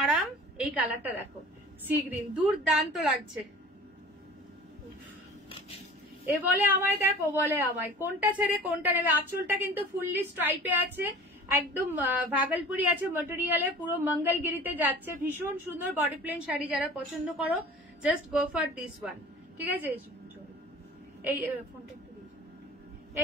আরাম, এই কালারটা দেখো সি গ্রিন, দুর্দান্ত লাগছে। এ বলে আমায় দেখো, বলে আমায় কোনটা ছেড়ে কোনটা নেবে। আঁচলটা কিন্তু ফুললি স্ট্রাইপে আছে, একদম ভাগলপুরি আছে মেটেরিয়ালে, পুরো মঙ্গলগিরিতে যাচ্ছে, ভীষণ সুন্দর বডি প্লেন শাড়ি যারা পছন্দ করো just go for this one, ঠিক আছে। এই ফোনটা একটু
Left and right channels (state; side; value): normal; both; correlation 0.43